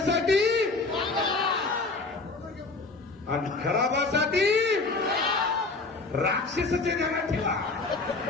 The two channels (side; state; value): right; quieter; 3.7 dB